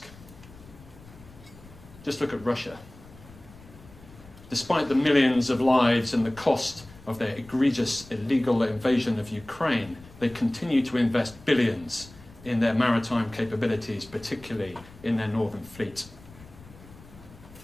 Just look at Russia. Despite the millions of lives and the cost of their egregious illegal invasion of Ukraine, they continue to invest billions in their maritime capabilities, particularly in their northern fleet.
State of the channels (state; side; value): noise; left; rumble, 21 dB below the sound